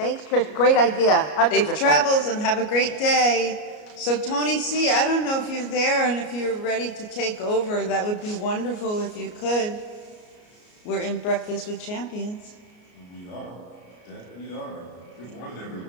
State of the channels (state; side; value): late; right; 33 ms